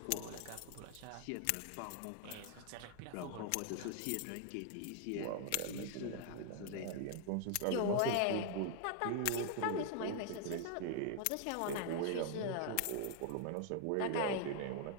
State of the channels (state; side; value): different; both; correlation 0.00